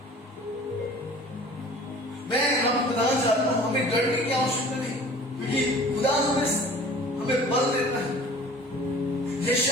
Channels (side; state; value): both; normal; correlation 0.46